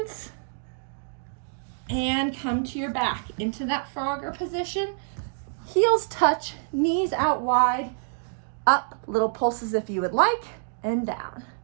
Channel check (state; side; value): silent; left; digital silence